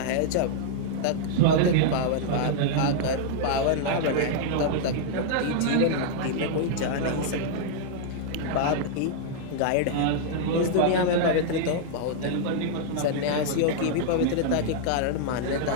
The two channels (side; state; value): both; different; correlation -0.01